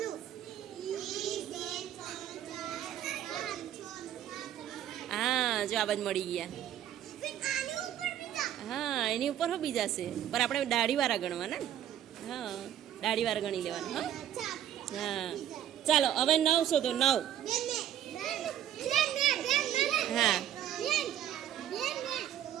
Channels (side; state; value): left; quieter; 11.0 dB